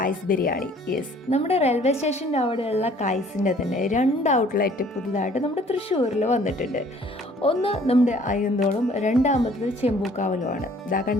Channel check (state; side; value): normal; both; correlation 0.56